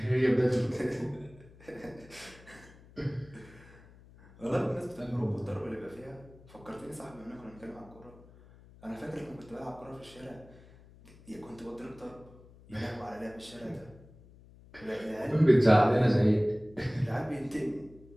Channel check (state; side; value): noise; left; hum, 23 dB below the sound